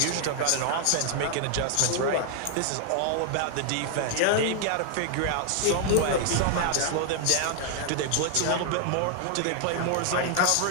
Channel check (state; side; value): different; both; correlation 0.00